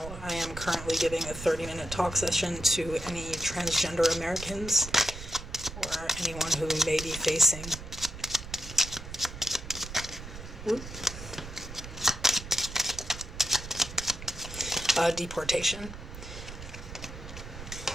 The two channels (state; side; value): noise; right; rumble, 11 dB below the sound